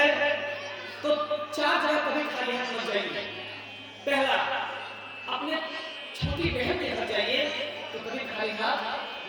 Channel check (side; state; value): both; identical; correlation 1.00